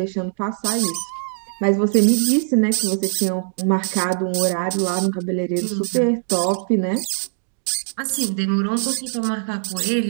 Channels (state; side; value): silent; left; 64 dB below the other